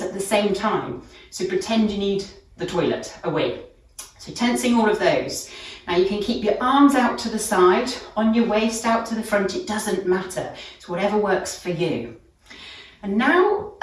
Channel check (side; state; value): both; identical; correlation 1.00